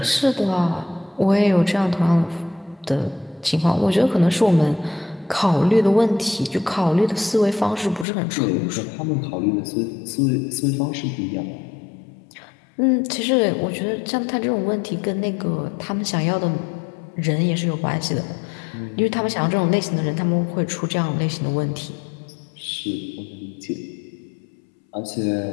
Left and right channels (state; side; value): drops out; right; at 8.1 s